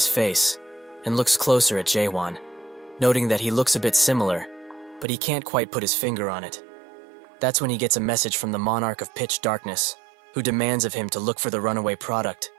face, and looks closer at Jae-won, noting that he looks a bit similar, but he can't quite put his finger on it. That's when he gets a message from the Monarch of Pitch Darkness, who demands of him to look for the runaway product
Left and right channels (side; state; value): left; drops out; at 5.1 s